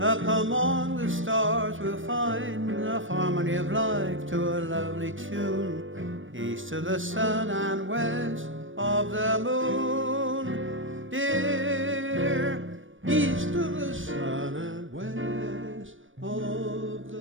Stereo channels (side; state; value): left; late; 0.57 ms